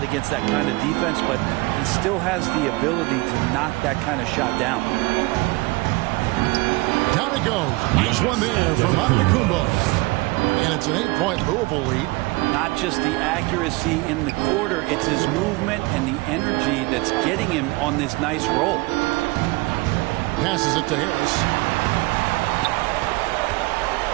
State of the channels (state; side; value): quieter; left; 23.5 dB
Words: against that kind of defense, but he still has the ability to knock that kind of shot down. Down it goes. Nice one there from Antetokounmpo. And it's an 8-point Louisville lead. Not just the accuracy in the quarter, it's his movement and the energy that's getting him on this nice roll. Passes it to Harris.